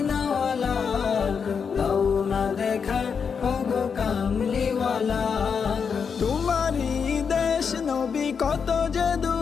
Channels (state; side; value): quieter; right; 6.2 dB